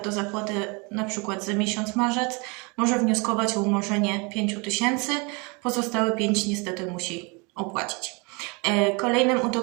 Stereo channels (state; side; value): quieter; left; 30.0 dB